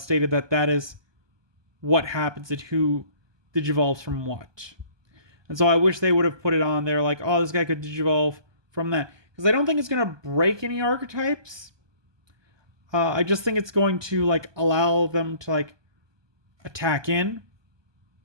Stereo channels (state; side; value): late; left; 1.2 ms